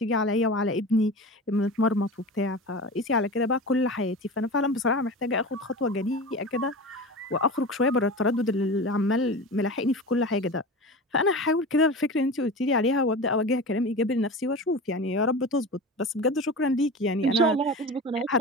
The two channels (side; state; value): both; normal; correlation 0.30